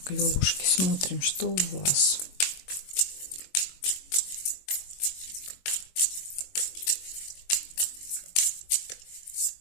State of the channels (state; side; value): late; right; 21 ms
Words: левушки, смотрим, что у вас.